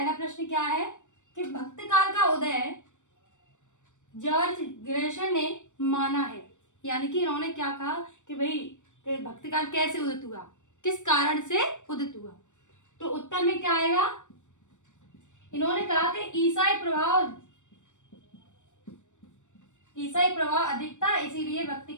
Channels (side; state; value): right; late; 0.85 ms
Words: प्रश्न क्या है कि भक्ति काल का उदय जॉर्ज ग्रेशम ने माना है। यानी कि इन्होंने क्या कहा कि भाई भक्ति काल कैसे उदित हुआ, किस कारण से उदित हुआ। तो उत्तर में क्या आएगा? इन्होंने कहा कि ईसाई प्रभाव अधिक था, इसीलिए भक्ति